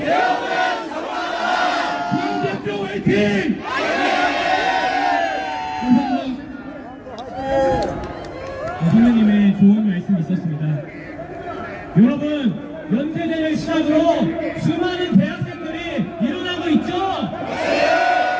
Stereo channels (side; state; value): both; identical; correlation 1.00